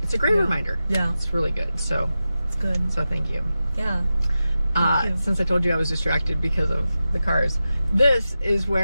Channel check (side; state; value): both; inverted; correlation -0.92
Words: It's a great reminder. It's really good. So it's good. So thank you. Thank you. Since I told you I was distracted because of the cars, this is